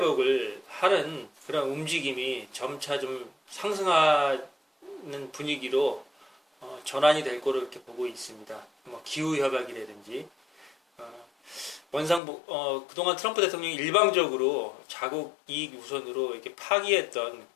하는 그런 움직임이 점차 좀 상승하는 분위기로 전환이 될 거로 이렇게 보고 있습니다. 뭐 기후 협약이라든지 그동안 트럼프 대통령이 일방적으로 자국 이익 우선으로 이렇게 파기했던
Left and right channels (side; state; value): right; drops out; at 12.2 s